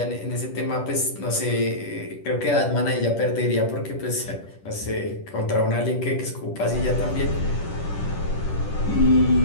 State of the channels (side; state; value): right; late; 10 ms